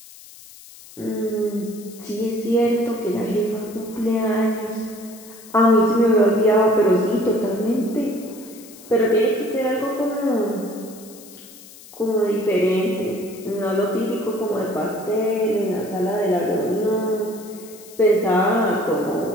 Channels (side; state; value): left; noise; hiss, 20 dB below the sound